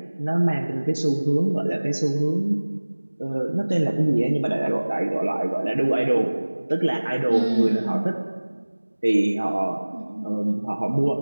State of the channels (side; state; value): both; inverted; correlation -1.00